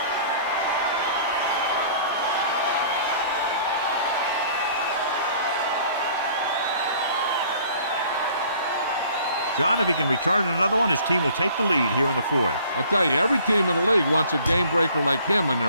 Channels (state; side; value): inverted; both; correlation -0.53